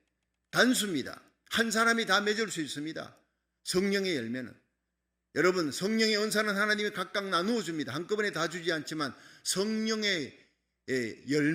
단수입니다. 한 사람이 다 맺을 수 있습니다. 성령의 열매는. 여러분, 성령의 은사는 하나님이 각각 나누어 줍니다. 한꺼번에 다 주지 않지만 성령의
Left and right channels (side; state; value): both; identical; correlation 1.00